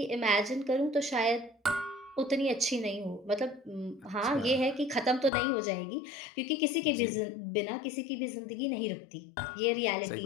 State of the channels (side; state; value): right; drops out; at 5.3 s